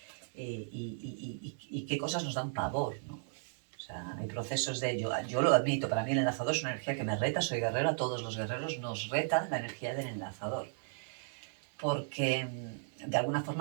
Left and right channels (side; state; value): left; silent; digital silence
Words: y qué cosas nos dan pavor, ¿no? O sea, hay procesos de yo lo admito, para mí el enlazador es una energía que me reta, soy guerrero, a todos los guerreros nos reta la energía del enlazador, porque de alguna